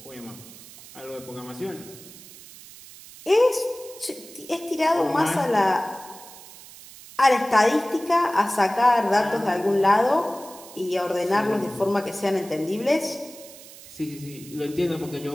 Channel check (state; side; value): noise; right; hiss, 18 dB below the sound